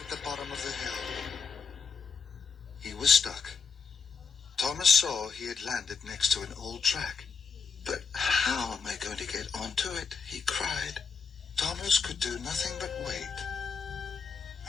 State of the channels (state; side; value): quieter; right; 5.5 dB